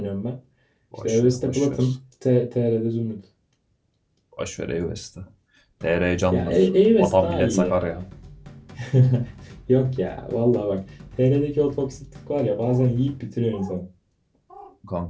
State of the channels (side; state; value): both; identical; correlation 1.00